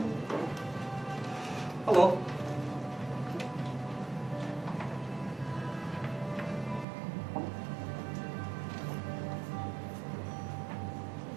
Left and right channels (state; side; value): drops out; left; at 6.9 s